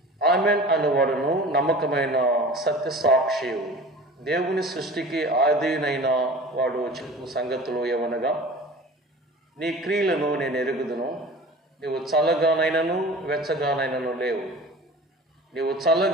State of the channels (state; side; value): normal; both; correlation 0.39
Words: ఆమెన్ అనువాడును నమ్మకమైన సత్యసాక్షి, దేవుని సృష్టికి ఆదినైన వాడు చెప్పు సంగతులు ఏమనగా, నీ క్రియలను నేను ఎరుగుదును. నీవు చల్లగానైనను వెచ్చగానైనను లేవు. నీవు